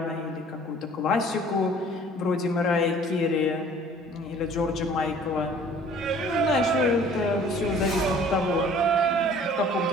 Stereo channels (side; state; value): both; normal; correlation 0.52